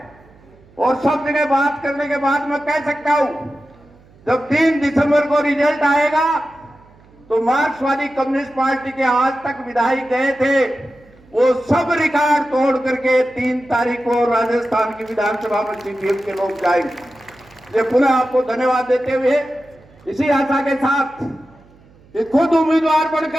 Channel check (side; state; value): right; noise; hum, 27 dB below the sound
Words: और सब जगह बात करने के बाद मैं कह सकता हूं, जब 3 दिसंबर को रिजल्ट आएगा तो मार्क्सवादी कम्युनिस्ट पार्टी के आज तक विधायक गए थे, वो सब रिकॉर्ड तोड़ करके 3 तारीख को राजस्थान की विधानसभा में सीपीएम के लोग जाएंगे। ये पुनः आपको धन्यवाद देते हुए, इसी आशा के साथ कि खुद उम्मीदवार